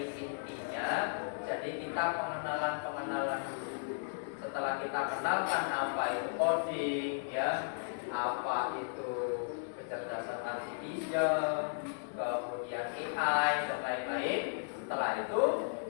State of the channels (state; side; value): silent; right; 54 dB below the other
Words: intinya, jadi kita pengenalan dulu. Setelah kita kenalkan apa itu coding, ya, apa itu kecerdasan artificial, kemudian AI dan lain-lain. Setelah itu